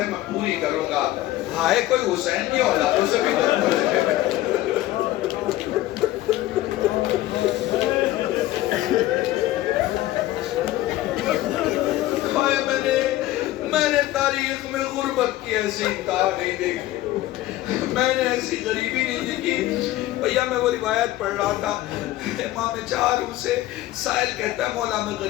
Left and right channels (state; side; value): quieter; right; 15.8 dB